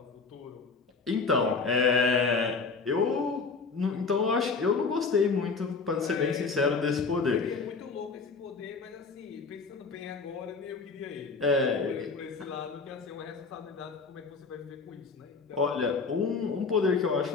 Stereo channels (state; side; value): quieter; right; 4.5 dB